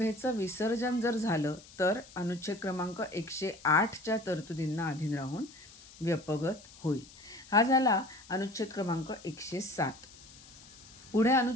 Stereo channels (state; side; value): noise; left; hiss, 21 dB below the sound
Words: विसर्जन जर झालं तर अनुच्छेद क्रमांक 108च्या तरतुदींना अधीन राहून व्यपगत होईल. हा झाला अनुच्छेद क्रमांक 107. पुढे